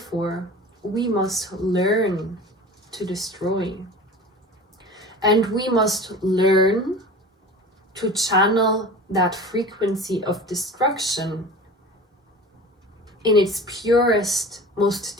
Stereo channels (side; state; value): both; normal; correlation 0.37